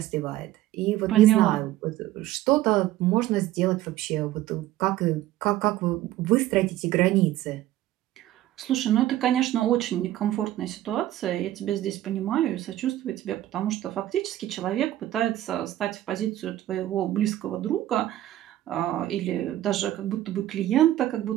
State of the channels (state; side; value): quieter; left; 14.1 dB